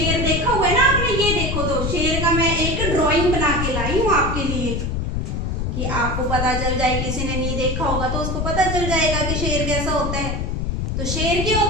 देखा हुआ है ना आपने? ये देखो, तो शेर का मैं एक ड्राइंग बना के लाई हूँ आपके लिए, कि आपको पता चल जाए। किसी ने नहीं देखा होगा तो उसको पता चल जाएगा कि शेर कैसा होता है। तो शेर क्या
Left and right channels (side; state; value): left; noise; rumble, 1 dB below the sound